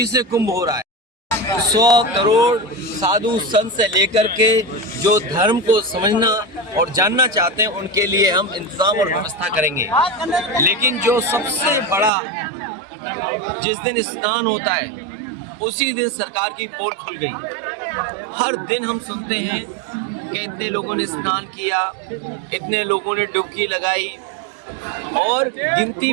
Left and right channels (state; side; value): drops out; left; at 12.1 s